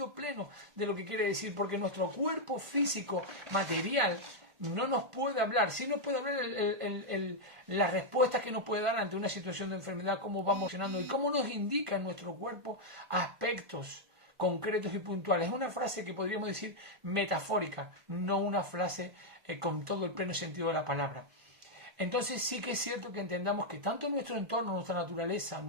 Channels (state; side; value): late; left; 1.4 ms